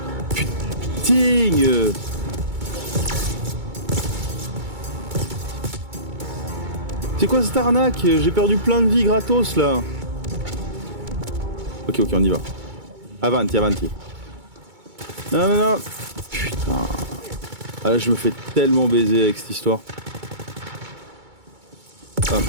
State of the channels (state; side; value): late; left; 2.2 ms